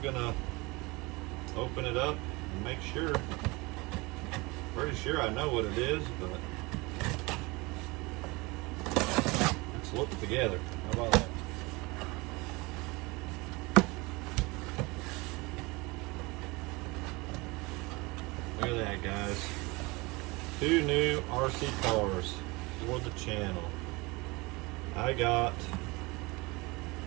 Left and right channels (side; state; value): left; quieter; 24.7 dB